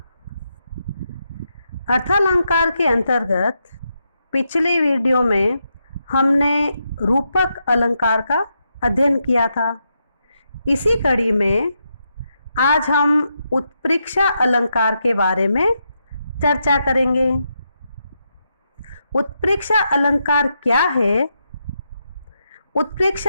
अर्थालंकार के अंतर्गत पिछले वीडियो में हमने रूपक अलंकार का अध्ययन किया था। इसी कड़ी में आज हम उत्प्रेक्षा अलंकार के बारे में चर्चा करेंगे। उत्प्रेक्षा अलंकार क्या है?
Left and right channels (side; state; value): both; inverted; correlation -0.83